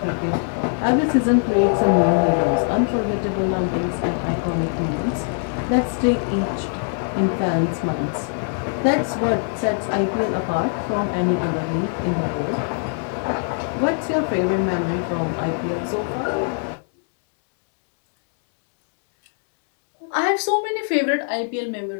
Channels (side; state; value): right; silent; 60 dB below the other